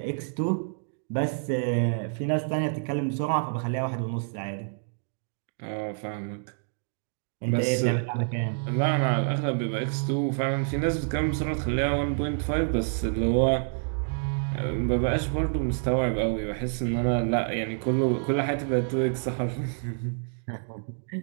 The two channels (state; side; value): silent; left; digital silence